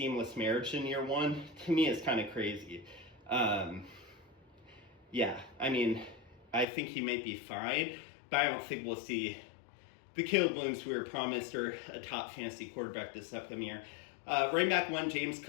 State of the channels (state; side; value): drops out; right; at 6.7 s